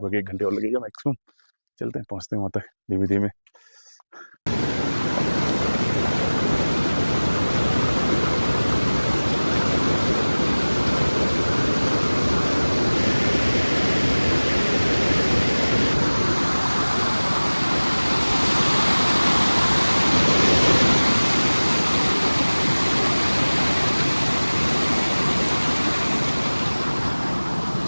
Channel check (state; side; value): inverted; both; correlation -1.00